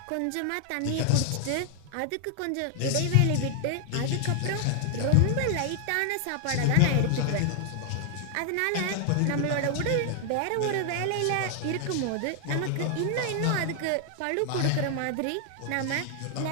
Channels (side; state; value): both; different; correlation 0.00